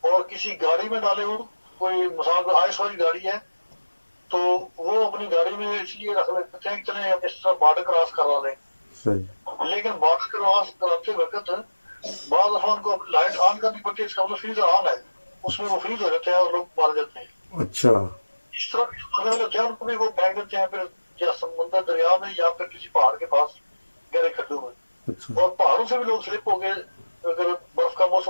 और किसी गाड़ी में डाले हो, कोई मिसाल आइस वाली गाड़ी है तो वो अपनी गाड़ी में इसलिए रख लेते हैं कि चले हम इस तरह बॉर्डर क्रॉस करवा लें, सही लेकिन बॉर्डर क्रॉस कराते वक्त बाद दफा उनको लाइट ऑन करनी पड़ती है, इसका मतलब फ्रीजर ऑन है, उसमें वो फ्रीज हो जाते हैं और लोग मारे जाते हैं। अच्छा इस तरह के मरने वाले होते हैं उनको भी वो फेंक देते हैं फिर या समुद्र दरिया में या फिर किसी पहाड़ के पास गहरे खड्डों में, अच्छा और पहाड़ों से भी लोग स्लिप हो गए, अगर बर्फ का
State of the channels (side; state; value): both; inverted; correlation -1.00